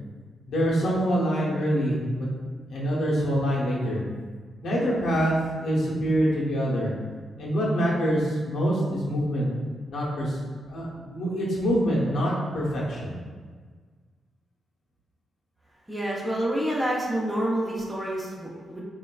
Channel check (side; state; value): both; normal; correlation 0.82